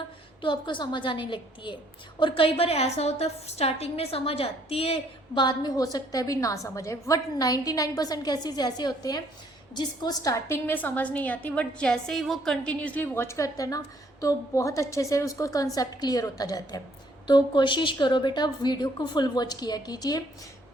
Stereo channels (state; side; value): normal; both; correlation 0.65